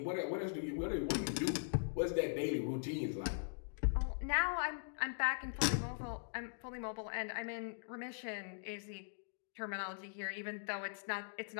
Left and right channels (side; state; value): right; silent; digital silence